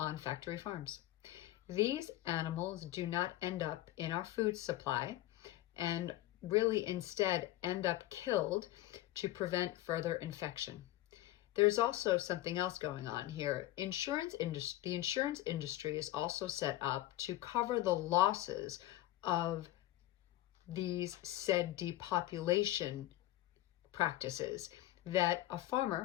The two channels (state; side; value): quieter; right; 15.5 dB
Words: factory farms. These animals do not end up in our food supply and really instead end up killed to prevent further infection. There's also something else going on here. The insurance industry is also set up to cover the losses of these said depopulation practices, that a